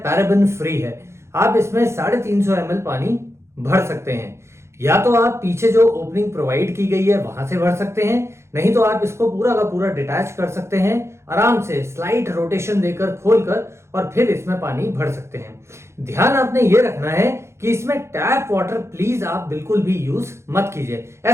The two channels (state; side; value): late; left; 0.13 ms